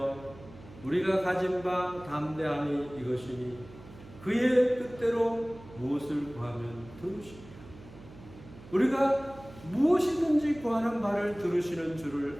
우리가 가진 바 담대함이 이것이니 그의 뜻대로 무엇을 구하면 들으시리라. 우리가 무엇이든지 구하는 바를 들으시는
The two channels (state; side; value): noise; right; hum, 19 dB below the sound